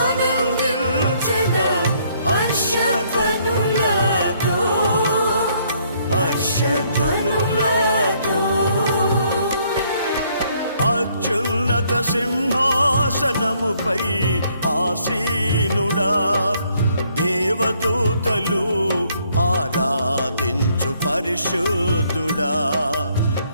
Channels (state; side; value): inverted; both; correlation -0.67